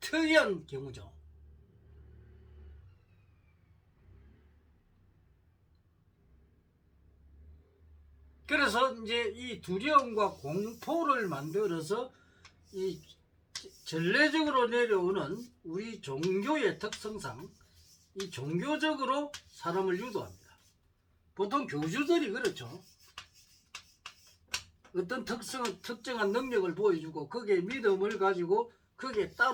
특이한 경우죠. 그래서 이제 이 두려움과 공포를 만들어서 이 전례적으로 내려오는 우리 종교의 특성상 이 종교적으로 사람을 유도합니다. 보통 교주들이 그렇죠. 어떤 특정한 능력을 보여주고 거기에 믿음을 가지고 거기에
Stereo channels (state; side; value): identical; both; correlation 1.00